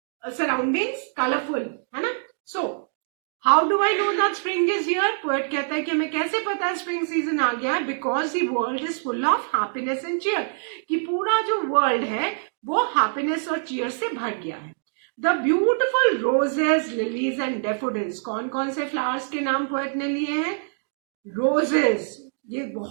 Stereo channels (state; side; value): silent; left; digital silence